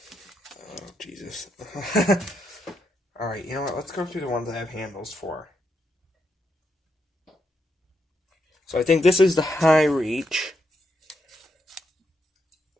Jesus. Alright, you know what? Let's go through the ones I have handles for. So I think this is the high reach.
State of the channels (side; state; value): both; normal; correlation 0.80